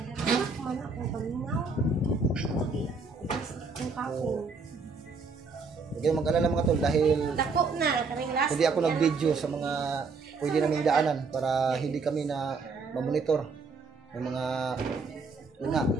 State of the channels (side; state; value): left; quieter; 4.4 dB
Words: Huwag kayong mag-alala mga tol dahil hindi ako nag-video sa mga pwede naming daanan para hindi kami na mamonitor ng mga yun nga,